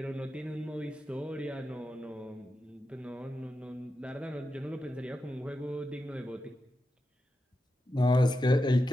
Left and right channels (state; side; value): normal; both; correlation 0.89